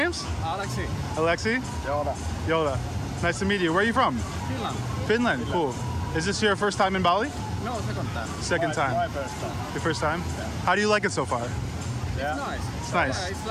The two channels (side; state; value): both; identical; correlation 1.00